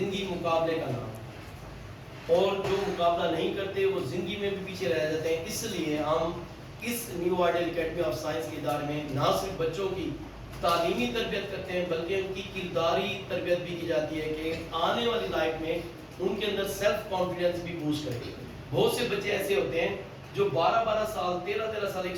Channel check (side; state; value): both; identical; correlation 1.00